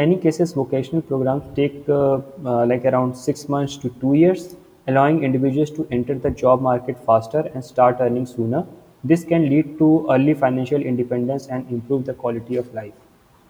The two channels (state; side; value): identical; both; correlation 1.00